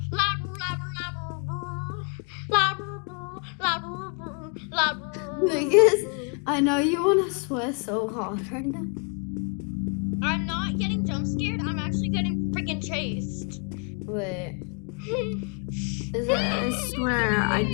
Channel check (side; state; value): right; quieter; 37.3 dB